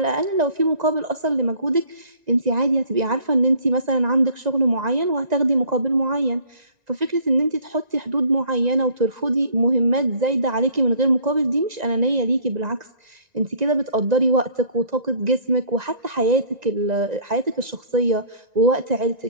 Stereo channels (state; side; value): late; left; 1.9 ms